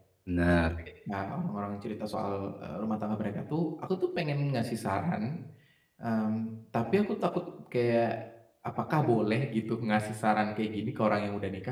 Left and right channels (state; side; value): identical; both; correlation 1.00